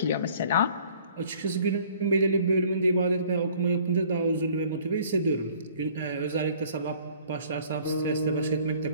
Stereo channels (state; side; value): inverted; both; correlation -0.55